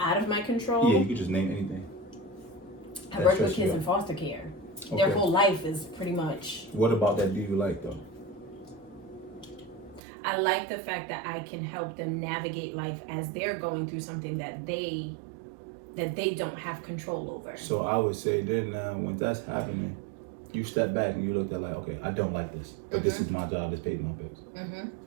of my control. Yeah, you could just name anything. I work with kids in foster care. Okay. Their whole life is pretty much. What about that do you like though? I like the fact that I can help them navigate life as they're going through something that they don't have control over. So I would say then when that's happening, you step back and you look at like, okay, I don't like this, but this is my job, it's paying my bills.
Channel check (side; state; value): left; drops out; at 10.0 s